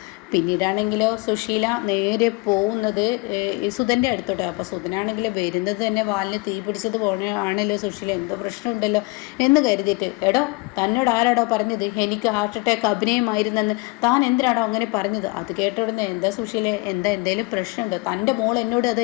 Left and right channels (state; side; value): quieter; right; 25.5 dB